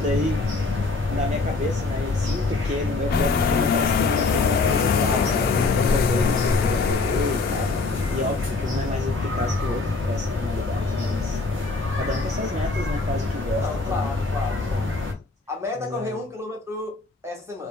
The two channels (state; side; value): quieter; right; 3.7 dB